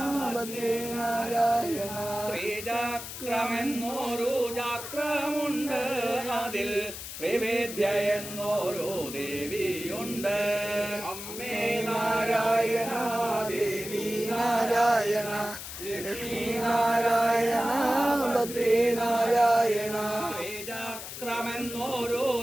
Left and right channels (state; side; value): noise; left; hiss, 9 dB below the sound